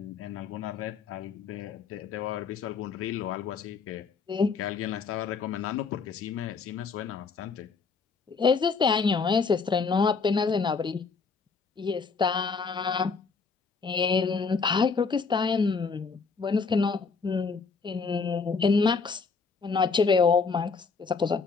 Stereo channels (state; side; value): quieter; right; 5.0 dB